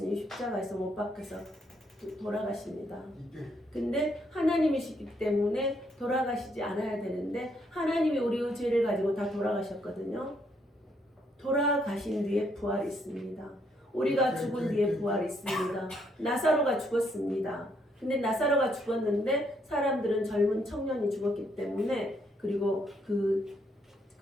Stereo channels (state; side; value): normal; both; correlation 0.73